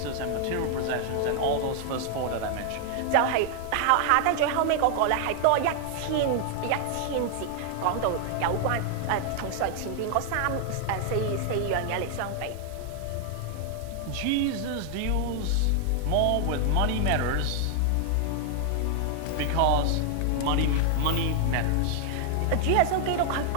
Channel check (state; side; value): different; both; correlation 0.00